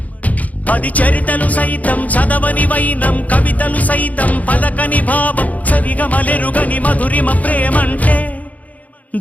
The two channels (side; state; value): right; late; 0.074 ms